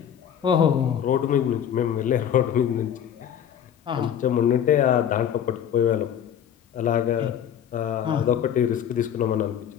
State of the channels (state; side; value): quieter; right; 9.2 dB